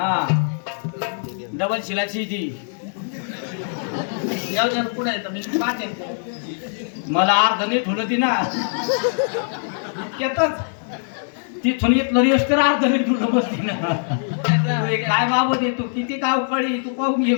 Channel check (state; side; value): silent; right; digital silence